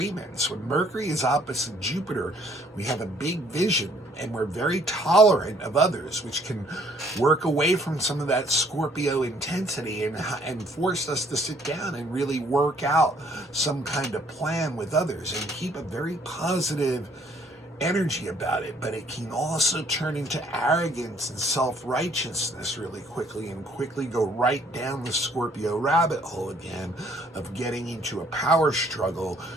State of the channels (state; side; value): normal; both; correlation 0.62